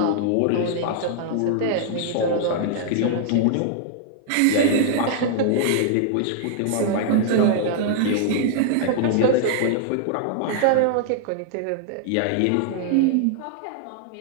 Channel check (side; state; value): both; different; correlation -0.01